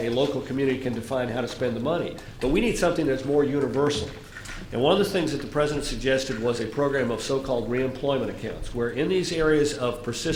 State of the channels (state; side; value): identical; both; correlation 1.00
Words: local community can define how to spend the money. But we need something that's more universal. And one of the things that the president suggested was a program of so-called reemployment accounts, where in these areas of